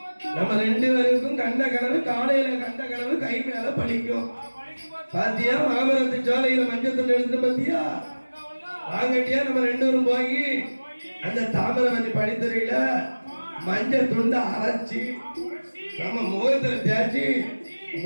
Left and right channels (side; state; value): both; inverted; correlation -1.00